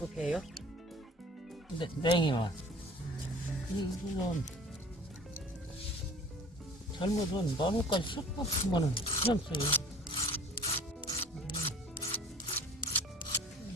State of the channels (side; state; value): both; normal; correlation 0.45